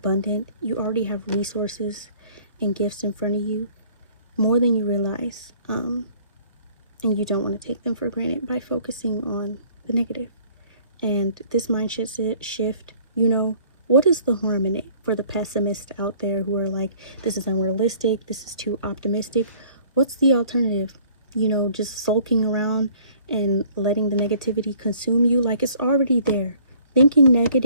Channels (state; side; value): inverted; both; correlation -0.56